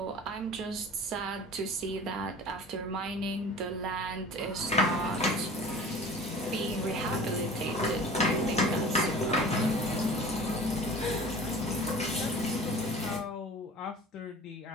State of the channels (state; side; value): normal; both; correlation 0.41